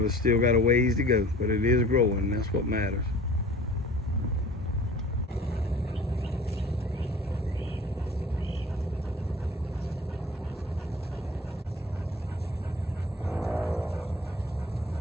it still got a ways to go, but it is growing. That's what matters.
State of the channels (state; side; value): normal; both; correlation 0.45